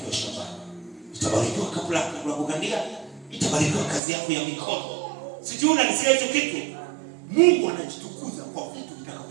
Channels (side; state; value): left; drops out; at 4.0 s